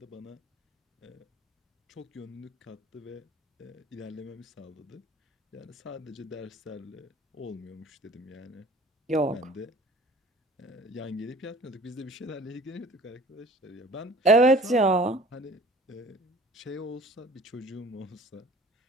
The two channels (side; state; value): both; normal; correlation 0.48